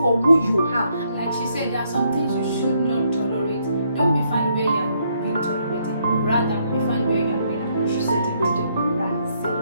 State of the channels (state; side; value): inverted; both; correlation -0.73